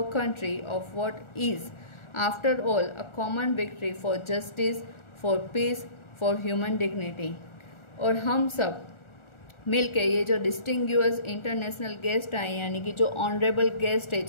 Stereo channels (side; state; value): right; late; 1.4 ms